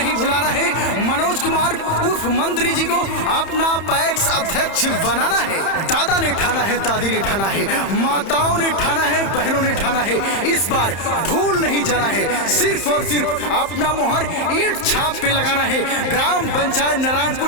भुलाना है। मनोज कुमार उर्फ मंत्री जी को अपना पैक्स अध्यक्ष बनाना है। दादा ने ठाना है, दादी ने ठाना है, माताओं ने ठाना है, बहनों ने ठाना है, इस बार भूल नहीं जाना है। सिर्फ और सिर्फ अपना मोहर ईंट छाप पे लगाना है। ग्राम पंचायत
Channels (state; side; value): late; right; 31 ms